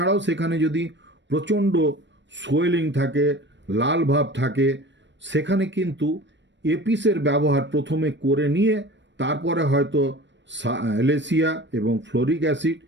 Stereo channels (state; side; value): late; left; 0.53 ms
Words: সেখানে যদি প্রচণ্ড সোয়েলিং থাকে, লাল ভাব থাকে, সেখানে কিন্তু এপিসের ব্যবহার প্রথমে করে নিয়ে তারপরে হয়তো সাইলেসিয়া এবং ফ্লোরিক অ্যাসিড